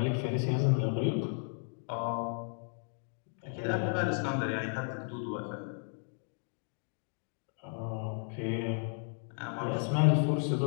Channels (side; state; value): right; silent; 55 dB below the other